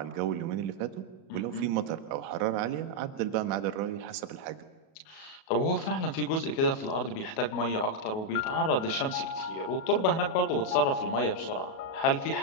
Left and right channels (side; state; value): right; late; 37 ms